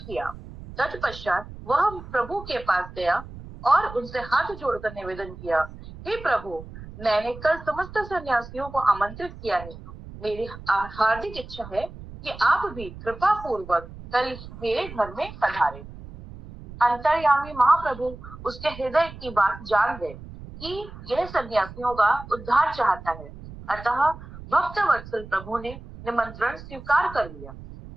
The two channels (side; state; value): right; noise; rumble, 15 dB below the sound